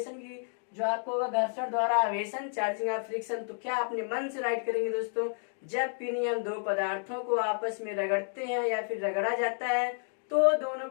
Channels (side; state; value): right; silent; 57 dB below the other